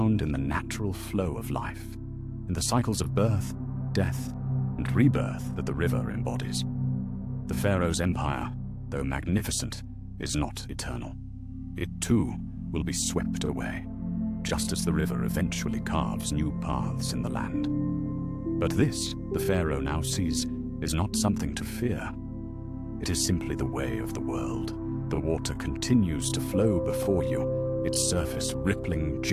in the natural flow of life, in the cycles of birth, death, and rebirth that the river embodies. The pharaoh's empire, though magnificent, is not eternal. It too will be swept away, just as the river eventually carves new paths in the land. But this, the pharaoh now sees, is not something to fear. It is simply the way of the world. The water continues to flow before you, its surface rippling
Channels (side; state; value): both; identical; correlation 1.00